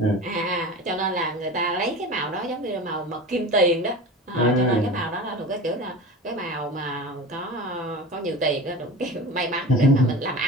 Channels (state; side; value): normal; both; correlation 0.32